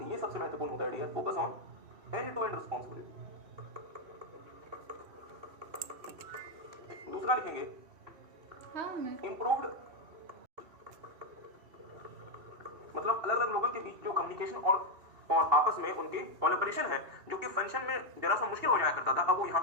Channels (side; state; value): left; late; 3.0 ms